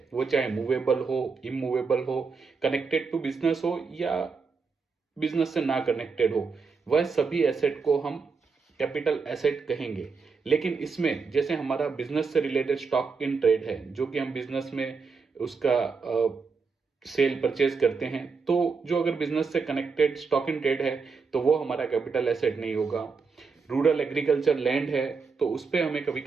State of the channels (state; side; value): quieter; left; 4.9 dB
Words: वो चाहे मूवेबल हो, इमूवेबल हो, कनेक्टेड टू बिजनेस हो या बिजनेस से ना कनेक्टेड हो, वह सभी एसेट को हम कैपिटल एसेट कहेंगे। लेकिन इसमें जैसे हमारा बिजनेस से रिलेटेड स्टॉक इन ट्रेड है, जो कि हम बिजनेस में उसका सेल परचेज करते हैं, तो जो अगर बिजनेस से कनेक्टेड स्टॉक इन ट्रेड है तो वो हमारा कैपिटल एसेट नहीं होगा। रूरल एग्रीकल्चर लैंड है तो उस पर हमें कभी